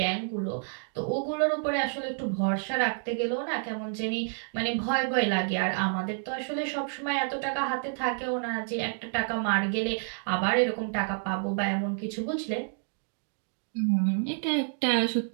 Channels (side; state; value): left; silent; 58 dB below the other